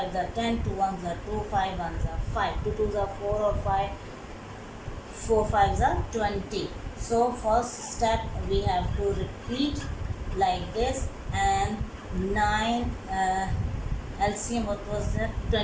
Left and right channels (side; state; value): both; identical; correlation 1.00